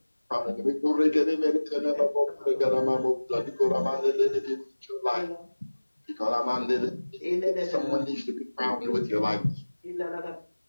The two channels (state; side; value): inverted; both; correlation -1.00